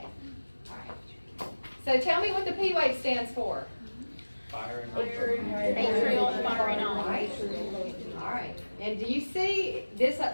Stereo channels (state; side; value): inverted; both; correlation -1.00